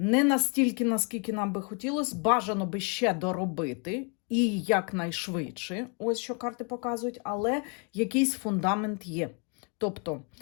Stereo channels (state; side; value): quieter; right; 35.7 dB